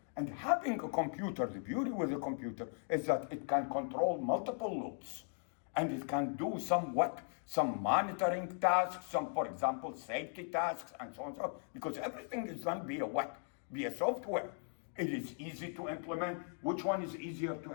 And having a computer, the beauty with a computer is that it can control multiple loops. And it can do some monitoring tasks, some, for example, safety tasks, and so on and so on. Because everything is done via what? Via software. It is easy to implement. Which one is easier to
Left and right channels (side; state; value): right; silent; 52 dB below the other